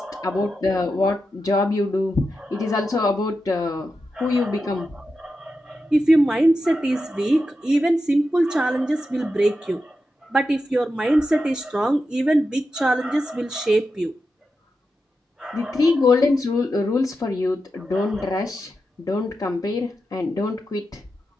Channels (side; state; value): both; normal; correlation 0.89